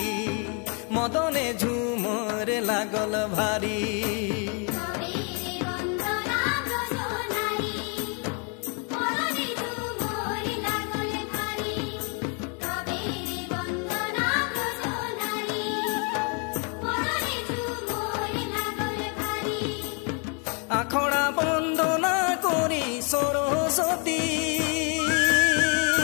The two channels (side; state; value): right; quieter; 36.5 dB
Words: মদনে ঝুমর লাগল ভারী আখড়া বন্দনা করি সরস্বতী